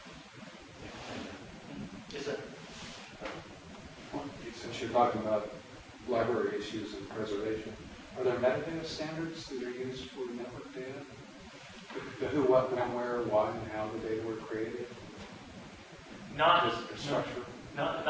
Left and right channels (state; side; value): identical; both; correlation 1.00